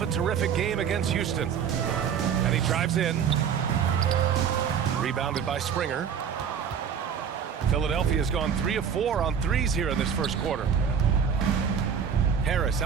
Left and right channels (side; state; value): left; quieter; 7.5 dB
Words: a terrific game against Houston. And he drives in. Rebounded by Springer. Philadelphia's gone 3 of 4 on threes here in this first quarter. Harris